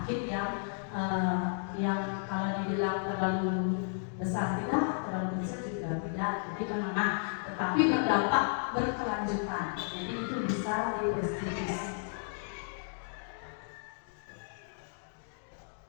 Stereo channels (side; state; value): right; silent; digital silence